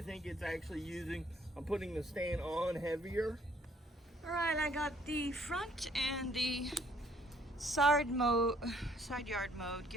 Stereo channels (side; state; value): both; normal; correlation 0.63